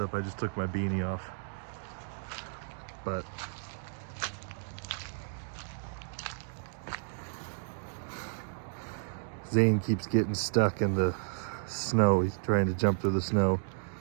I just took my beanie off. But Zane keeps getting stuck in the snow. He's trying to jump through the snow.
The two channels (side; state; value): left; silent; digital silence